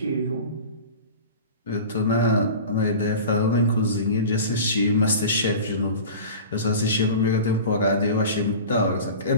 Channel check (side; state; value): both; inverted; correlation -0.36